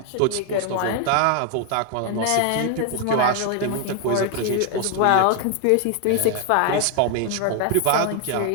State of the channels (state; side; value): different; both; correlation 0.01